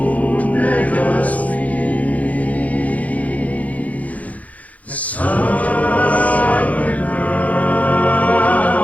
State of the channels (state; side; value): late; right; 0.071 ms